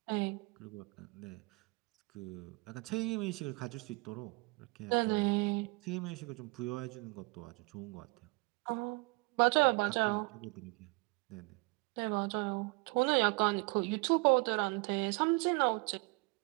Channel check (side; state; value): left; quieter; 28.8 dB